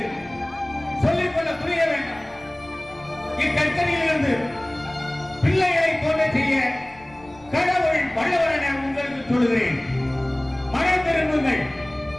சொல்லிக்கொள்ள துணிய வேண்டாம். இக்கச்சனையிலிருந்து பிள்ளைகளை தோன்ற செய்ய கடவுள் வல்லவர் என உங்களுக்கு சொல்லுகிறேன். மனம் திரும்புங்கள்.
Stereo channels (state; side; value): noise; left; rumble, 25 dB below the sound